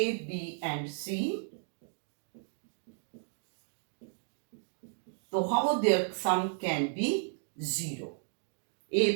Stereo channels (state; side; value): silent; left; digital silence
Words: B and C, so how their sum can be 0. A